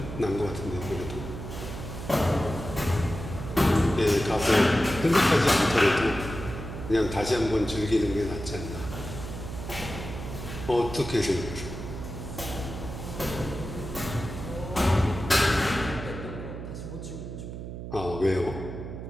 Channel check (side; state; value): right; noise; hum, 8 dB below the sound